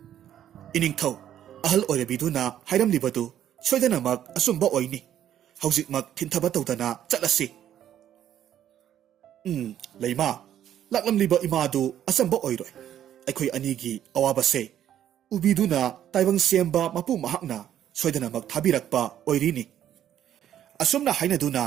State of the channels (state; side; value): quieter; left; 10.8 dB